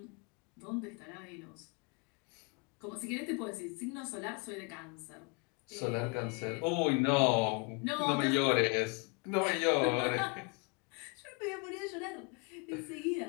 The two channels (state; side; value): quieter; right; 31.7 dB